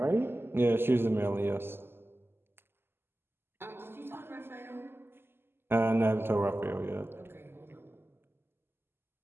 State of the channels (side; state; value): left; late; 0.11 ms